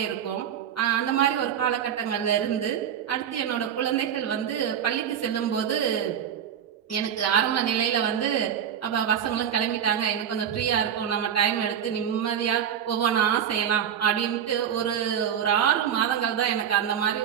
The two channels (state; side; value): quieter; left; 9.0 dB